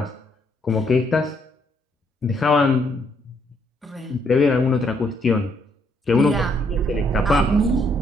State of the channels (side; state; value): both; normal; correlation 0.71